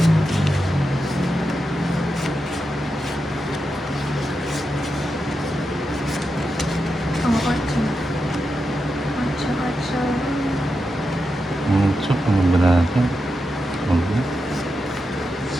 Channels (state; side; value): normal; both; correlation 0.88